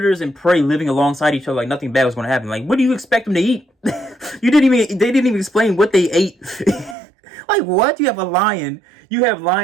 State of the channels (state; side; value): drops out; left; at 7.0 s